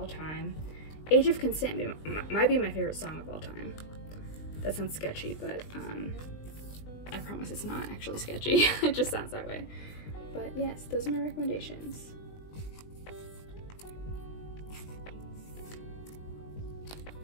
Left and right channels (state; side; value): late; right; 20 ms